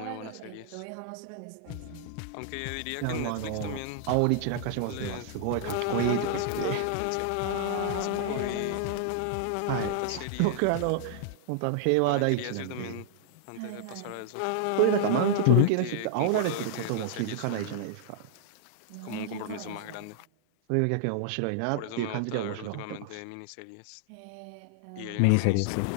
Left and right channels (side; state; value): both; different; correlation -0.01